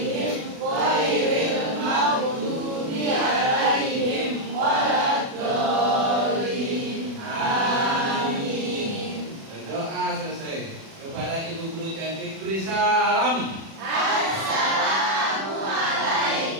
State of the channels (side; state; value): left; late; 36 ms